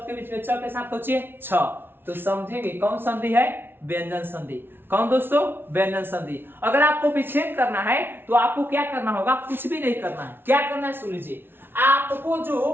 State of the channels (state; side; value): late; left; 0.11 ms